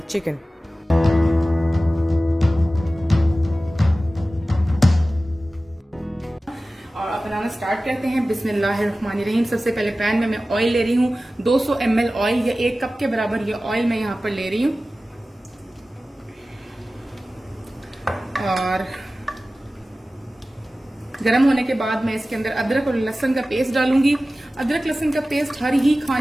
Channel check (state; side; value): normal; both; correlation 0.96